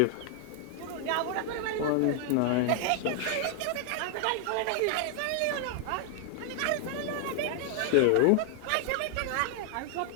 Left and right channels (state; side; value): different; both; correlation 0.00